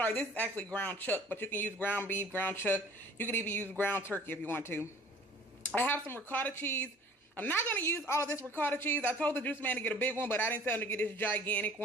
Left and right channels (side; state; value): both; normal; correlation 0.50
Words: this is actually ground chuck, but you can use ground beef, ground chuck. You can even use ground turkey if you want to. I have some ricotta cheese. I'm not going to use all of this ricotta cheese. I told the juice man to get a big one, but I didn't tell him to get this gigantic